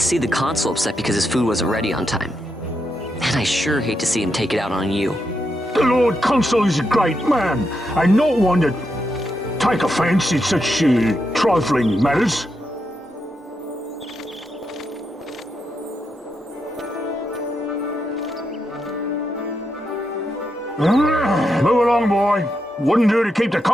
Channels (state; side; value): normal; both; correlation 0.83